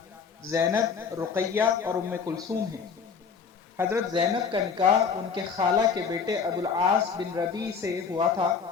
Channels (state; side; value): quieter; right; 6.0 dB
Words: زینب، رقیہ اور ام کلثوم ہیں۔ حضرت زینب کا نکاح ان کے خالہ کے بیٹے ابو العاص بن ربیع سے ہوا تھا،